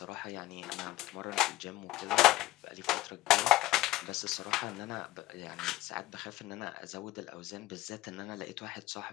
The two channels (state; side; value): quieter; right; 17.7 dB